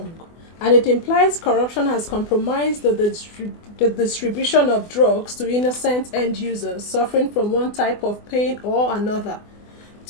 and it implies corruption has compromised the distribution of drugs to innocent end users suffering from one type of pain or another.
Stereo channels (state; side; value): late; right; 24 ms